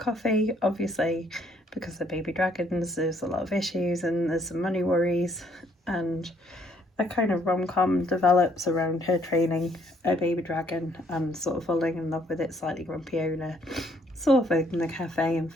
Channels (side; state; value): both; normal; correlation 0.66